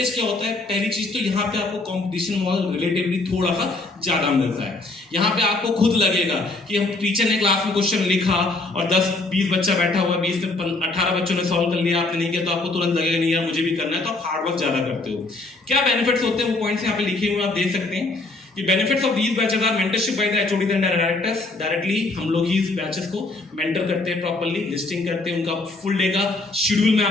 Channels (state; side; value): quieter; right; 3.1 dB